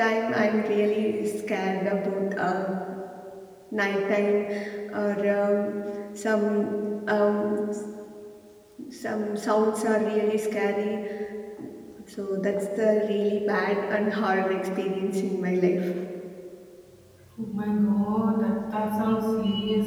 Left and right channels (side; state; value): both; identical; correlation 1.00